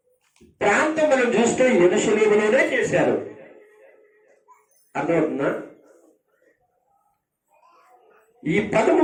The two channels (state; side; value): identical; both; correlation 1.00